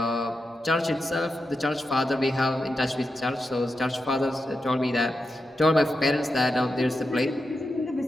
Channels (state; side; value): normal; both; correlation 0.88